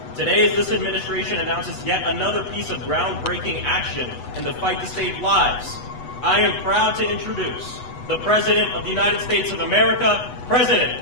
Today, as this administration announces yet another piece of groundbreaking action in the fight to save lives, I am proud to introduce the President of the United States of America, President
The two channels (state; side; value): late; right; 8.1 ms